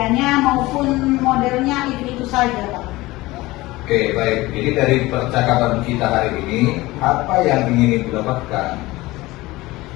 maupun modelnya itu saja Pak. Oke, baik. Jadi dari percakapan kita hari ini, apa yang ingin Ibu dapatkan?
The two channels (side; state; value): right; quieter; 19.6 dB